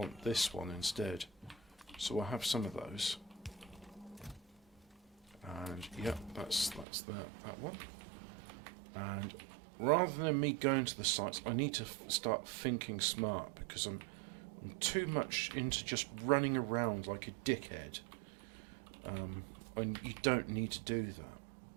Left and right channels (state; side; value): drops out; left; at 6.9 s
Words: this one instead. So I'll have some of those. And yep, that's that one. And rather than me going to the sites, I need to start thinking smart because I'm too much into just running around like a dickhead. And you don't need to do